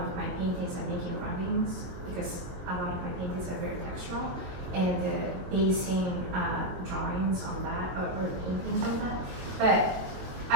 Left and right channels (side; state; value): left; late; 22 ms